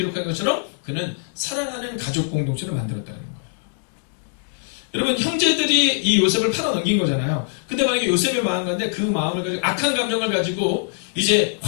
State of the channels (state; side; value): silent; right; 64 dB below the other